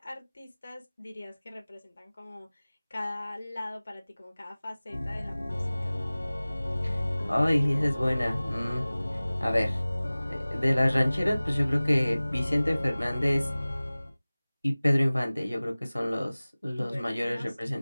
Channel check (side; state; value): both; inverted; correlation -0.99